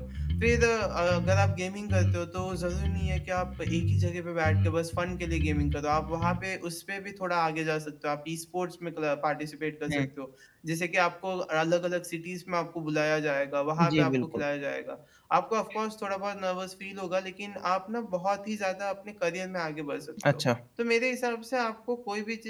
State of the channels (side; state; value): both; identical; correlation 1.00